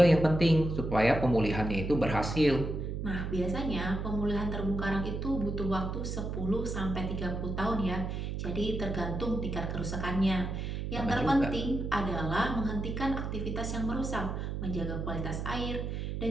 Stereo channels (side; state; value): right; noise; hum, 4 dB below the sound